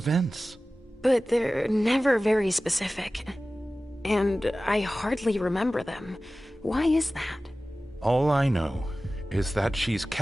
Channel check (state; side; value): normal; both; correlation 0.97